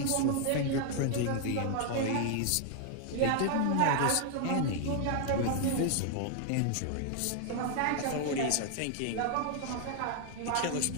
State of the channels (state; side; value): different; both; correlation 0.00